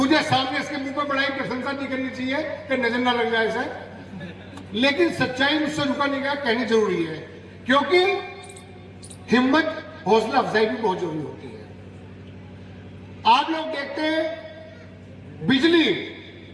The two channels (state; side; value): identical; both; correlation 1.00